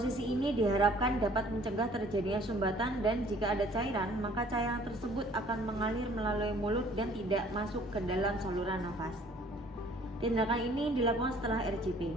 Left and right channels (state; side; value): normal; both; correlation 0.56